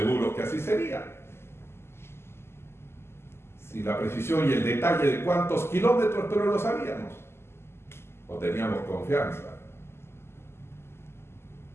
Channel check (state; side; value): late; right; 0.12 ms